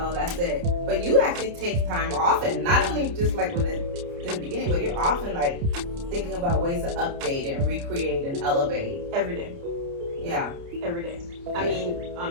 that's it. But you actually take time often, not only just like in the beginning, but you're often like thinking about ways to update and recreate and elevate. Every day. Yeah. Every day. I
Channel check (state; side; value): late; left; 29 ms